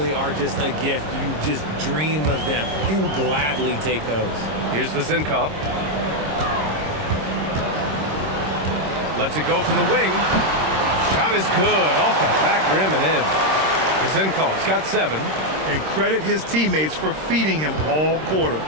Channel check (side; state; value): left; late; 26 ms